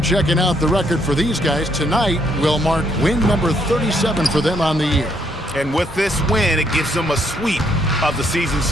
out the record for these guys tonight will mark win number 37 for them on the year. And with this win, it gives them a sweep of the season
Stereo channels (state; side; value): normal; both; correlation 0.72